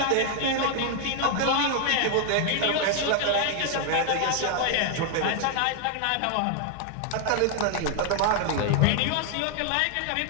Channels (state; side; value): different; both; correlation 0.00